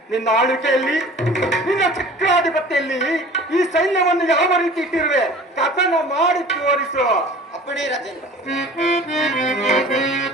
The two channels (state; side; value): normal; both; correlation 0.44